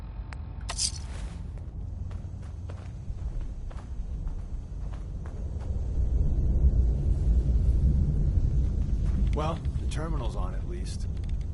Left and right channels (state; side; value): identical; both; correlation 1.00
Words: Well, the terminal's on at least.